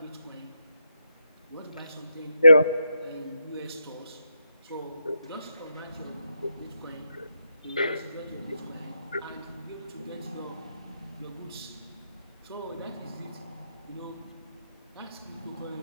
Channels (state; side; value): inverted; both; correlation -0.82